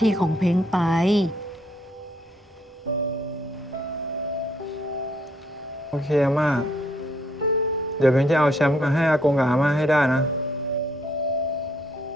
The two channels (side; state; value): both; normal; correlation 0.69